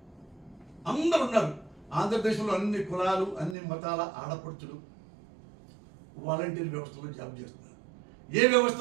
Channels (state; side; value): drops out; left; at 3.6 s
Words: అందరు ఉన్నారు. ఆంధ్రప్రదేశ్లో అన్ని కులాలు అన్ని మతాల ఆడపడుచులు వాలంటీర్ వ్యవస్థలో జాబ్ చేస్తున్నారు. ఏ